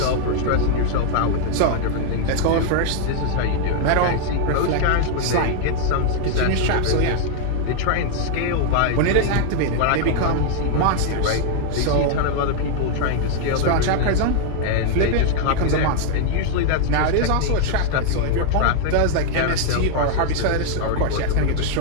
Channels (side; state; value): both; different; correlation 0.00